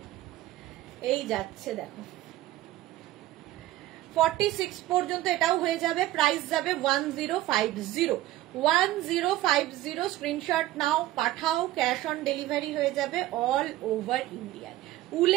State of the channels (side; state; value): left; quieter; 15.7 dB